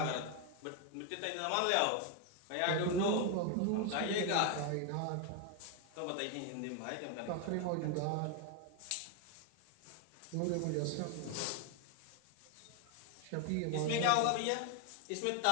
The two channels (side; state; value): both; different; correlation 0.01